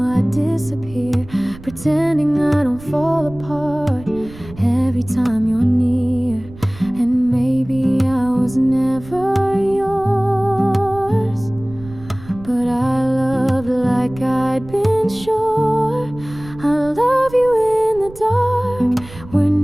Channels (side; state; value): right; noise; rumble, 17 dB below the sound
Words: I disappear, pretending I don't fall apart every time you're near. And maybe I was never yours, but I loved like I'd been sure. I love you in the dark, where